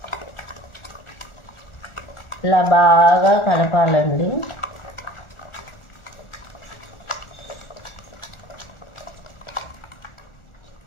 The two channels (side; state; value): right; late; 1.4 ms